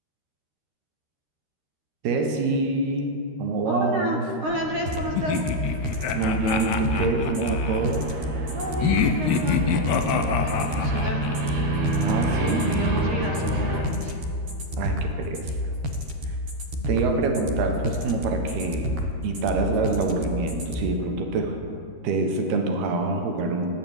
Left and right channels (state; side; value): late; left; 13 ms